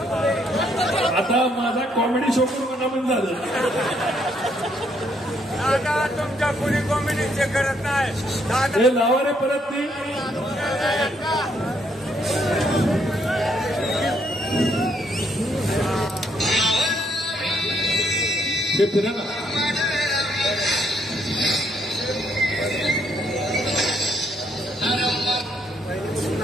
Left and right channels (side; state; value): both; normal; correlation 0.71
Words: आता माझा कॉमेडी शो करून मनामन झालं. तुमच्या कोणी कॉमेडी चेक करत नाही. हे लावा रे परत ती. हे फिरा ना.